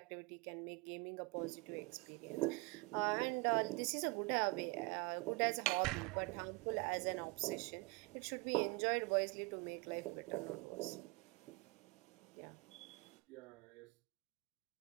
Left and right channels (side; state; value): left; quieter; 25.7 dB